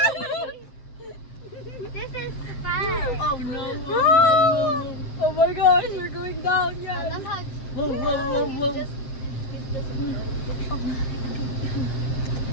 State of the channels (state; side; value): late; right; 8.0 ms